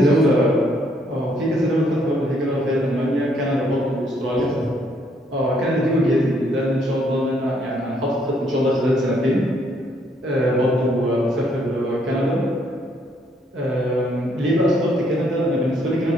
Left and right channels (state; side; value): normal; both; correlation 0.69